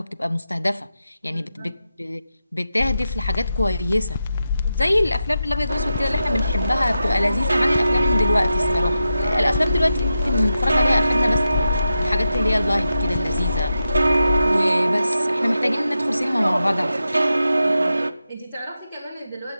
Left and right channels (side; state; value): both; inverted; correlation -0.89